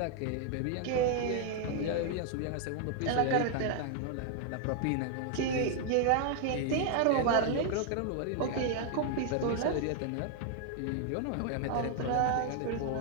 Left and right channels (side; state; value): both; different; correlation 0.00